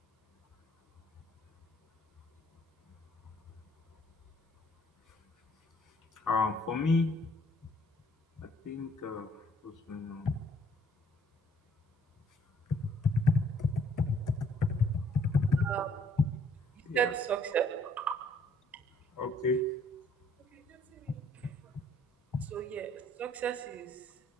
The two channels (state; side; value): normal; both; correlation 0.63